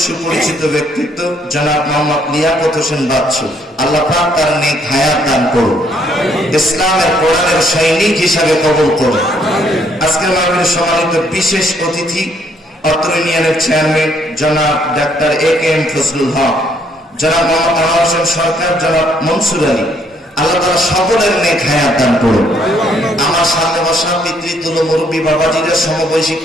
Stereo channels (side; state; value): both; normal; correlation 0.68